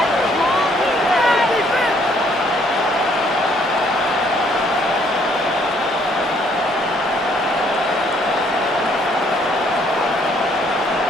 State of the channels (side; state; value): both; normal; correlation 0.65